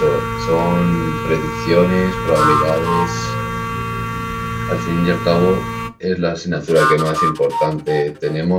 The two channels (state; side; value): identical; both; correlation 1.00